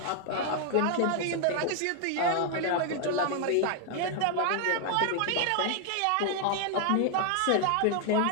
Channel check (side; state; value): both; different; correlation 0.00